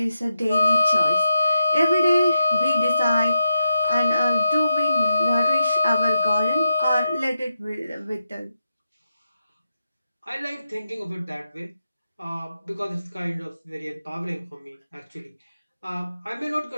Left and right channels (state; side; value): inverted; both; correlation -0.87